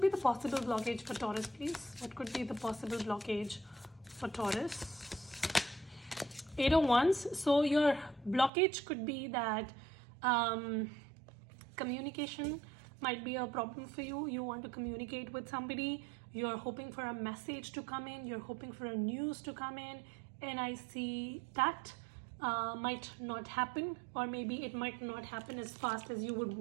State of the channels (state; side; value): drops out; left; at 8.5 s